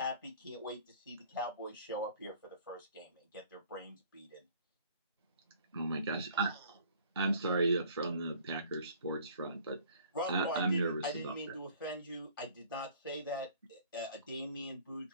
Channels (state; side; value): inverted; both; correlation -0.53